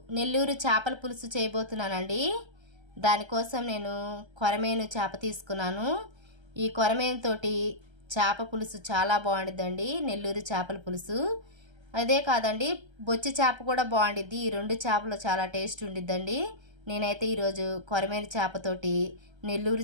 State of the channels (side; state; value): left; late; 1.3 ms